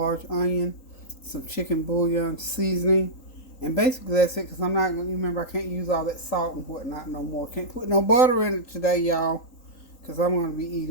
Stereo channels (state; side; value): late; right; 3.8 ms